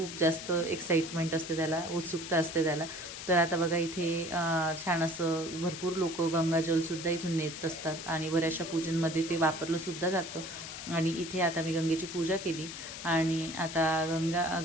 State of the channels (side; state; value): left; noise; hiss, 9 dB below the sound